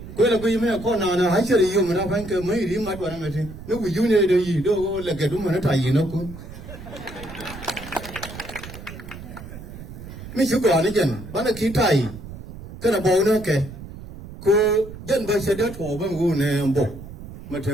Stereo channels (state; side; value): noise; right; rumble, 13 dB below the sound